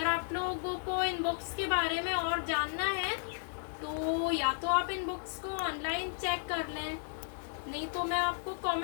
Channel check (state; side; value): silent; right; digital silence